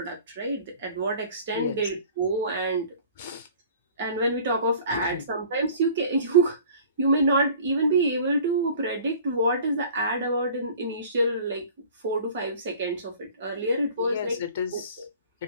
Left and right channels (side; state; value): both; inverted; correlation -0.46